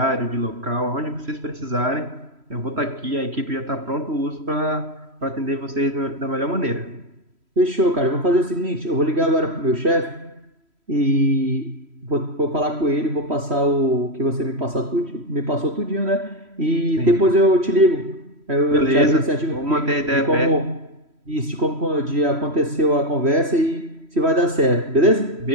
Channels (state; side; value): late; left; 3.1 ms